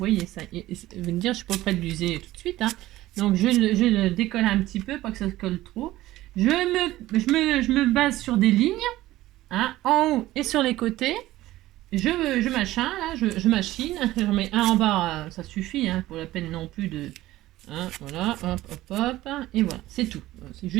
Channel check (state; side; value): quieter; left; 16.2 dB